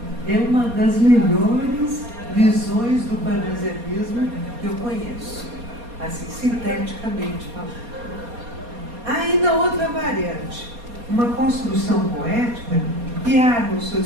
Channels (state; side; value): late; left; 4.2 ms